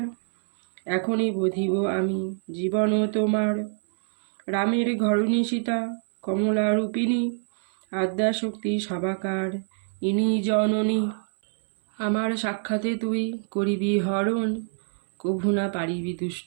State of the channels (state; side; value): silent; left; 61 dB below the other